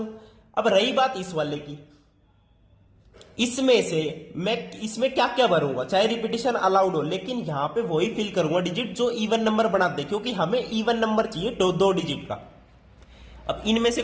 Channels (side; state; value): both; identical; correlation 1.00